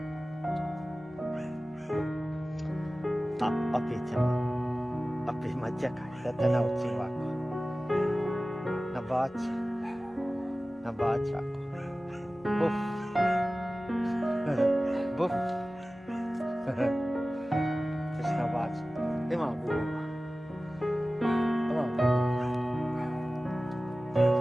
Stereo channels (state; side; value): normal; both; correlation 0.97